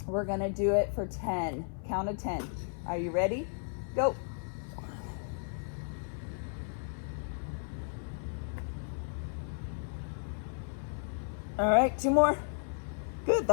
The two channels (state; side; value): silent; right; 55 dB below the other